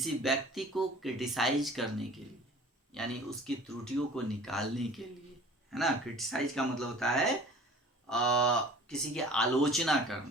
व्यक्ति को क्रिटिसाइज करने के लिए, यानी उसकी त्रुटियों को निकालने के लिए, है ना। क्रिटिसाइज का मतलब होता है किसी की आलोचना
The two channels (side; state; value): both; normal; correlation 0.46